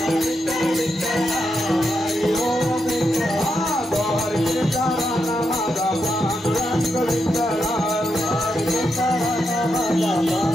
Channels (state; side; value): normal; both; correlation 0.84